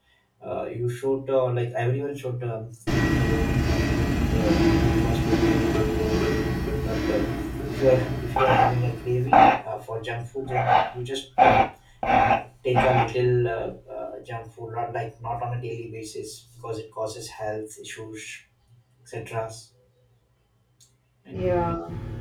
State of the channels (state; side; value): identical; both; correlation 1.00